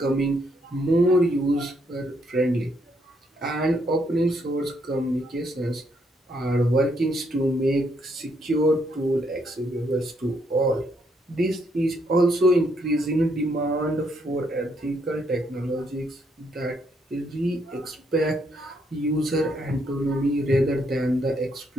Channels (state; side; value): normal; both; correlation 0.74